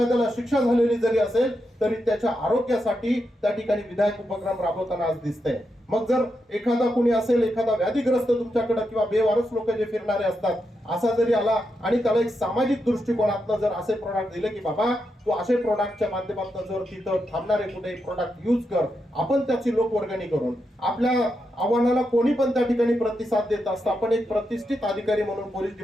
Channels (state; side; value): normal; both; correlation 0.85